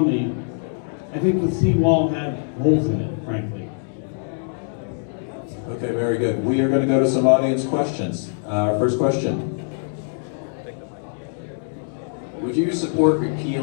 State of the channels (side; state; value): right; silent; digital silence